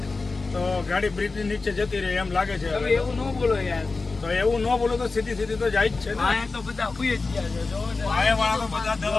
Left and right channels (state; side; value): quieter; right; 3.9 dB